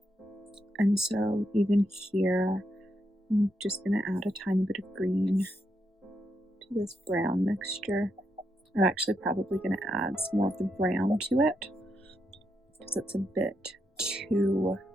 And so even here, I'm just going to add a tiny bit of green to this brown mixture. I'm actually probably going to add some more of the brown to it because it's a bit too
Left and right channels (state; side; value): normal; both; correlation 0.82